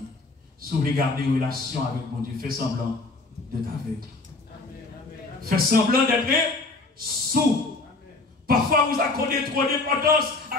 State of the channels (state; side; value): quieter; right; 3.4 dB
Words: si vous voulez garder une relation avec mon Dieu, fais semblant d'être avec. Fais semblant d'être sous. Parfois, vous accordez trop d'importance